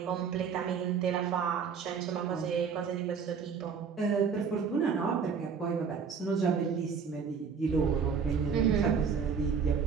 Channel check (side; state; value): left; quieter; 6.2 dB